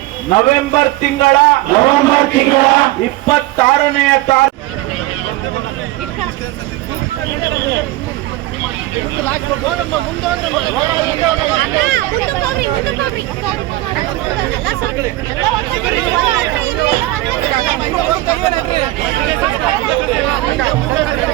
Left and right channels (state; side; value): quieter; left; 17.4 dB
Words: ನವೆಂಬರ್ ತಿಂಗಳ 26ನೇ ತಾರೀಕು